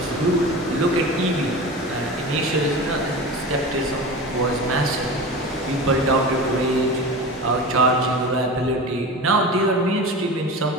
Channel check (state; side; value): normal; both; correlation 0.30